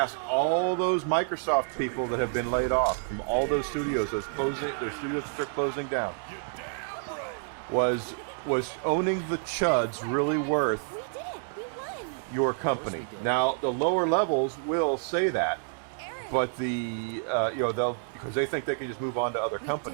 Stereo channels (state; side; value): silent; left; digital silence